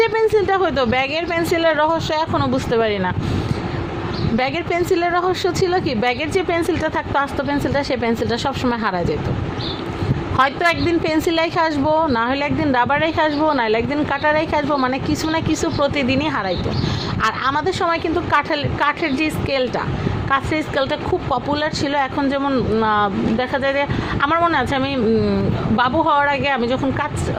যে পেন্সিলটা হতো, ব্যাগের পেন্সিলের রহস্য এখনও বুঝতে পারি না। ব্যাগের পেন্সিলের রহস্য ছিল কি, ব্যাগের যে পেন্সিলটা থাকতো আস্ত পেন্সিলটা, সেই পেন্সিলটা সবসময় হারা যেত। হয়তো একদিন পেন্সিল রেখে আসবো, না হলে একদিন রাবার রেখে আসবো, না হলে একদিন কাটার রেখে আসবো, মানে কিছু না কিছু প্রতিদিনই হারাইতো। আর আমাদের সময় কিন্তু কাঠের যে স্কেলটা খুব পপুলার ছিল। এখন যেমন দেখা যায় যে, আমার মনে আছে আমি বাবু হওয়ার আগে আমি যখন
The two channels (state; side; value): identical; both; correlation 1.00